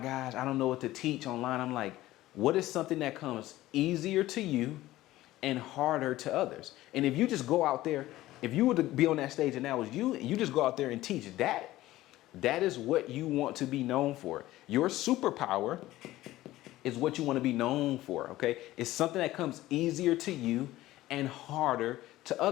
I don't know what to teach online. I'm like, what is something that comes easier to you and harder to others? And if you just go out there, if you were to be on that stage and that was you, and you just go out there and teach that, that is what you want to be known for. Your superpower is what you want to be known for, okay? It's something that comes easier to you and harder to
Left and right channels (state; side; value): quieter; right; 16.1 dB